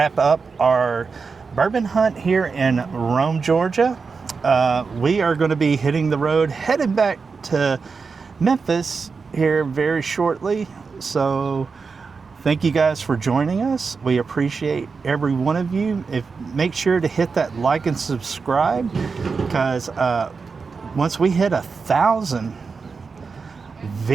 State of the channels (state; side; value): quieter; left; 4.9 dB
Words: up our bourbon hunt here in Rome, Georgia. We are going to be hitting the road, headed back to Memphis here very shortly. So thank you guys for joining us. We appreciate every one of you. Make sure to hit that like and subscribe, because once we hit 1,000,